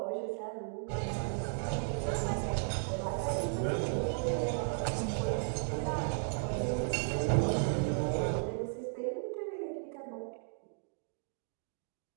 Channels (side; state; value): left; silent; digital silence